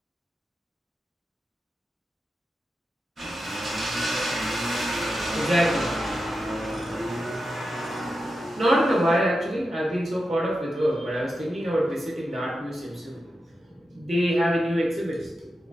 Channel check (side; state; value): both; normal; correlation 0.89